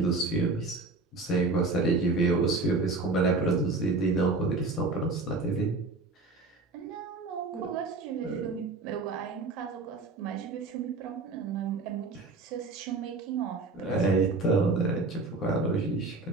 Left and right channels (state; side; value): quieter; left; 3.6 dB